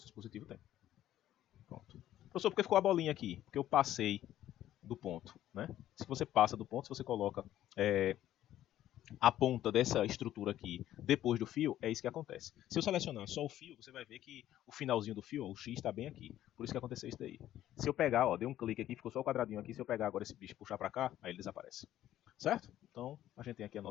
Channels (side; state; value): right; quieter; 12.7 dB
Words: dispositivo tem. Pronto. Professor, por que ficou a bolinha aqui? Porque eu passei do ponto, né? Se você passa do ponto, se você coloca a ponta dessa estrutura aqui depois do fio, é isso que acontece. Se eu selecionar só o fio, você vai ver que o finalzinho do fio, ó, o X está bem aqui. Por isso que aconteceu isso daí. Se eu pegar, ó, dei um clique aqui, ficou só o quadradinho aqui. Se eu pegar agora esse bicho e puxar para cá, aí ele desaparece. Certo? Então, a gente tem aqui a